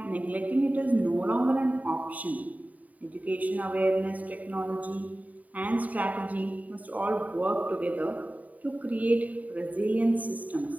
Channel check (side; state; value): left; late; 0.073 ms